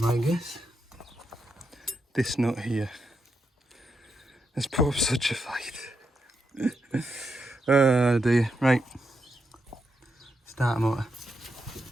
my guess. This nut here has put up such a fight. Oh dear. Right. Start motor.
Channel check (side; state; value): both; normal; correlation 0.83